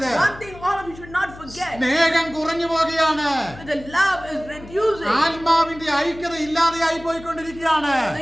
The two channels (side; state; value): left; noise; hum, 18 dB below the sound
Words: One thing all of you should not forget. സ്നേഹം കുറഞ്ഞു പോകുകയാണ്. The love is reducing. ആത്മാവിന്റെ ഐക്യത ഇല്ലാതെയായി പോയിക്കൊണ്ടിരിക്കുകയാണ്.